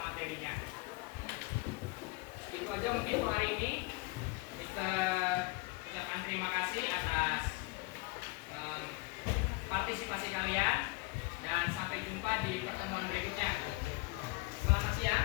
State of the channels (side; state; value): right; quieter; 25.4 dB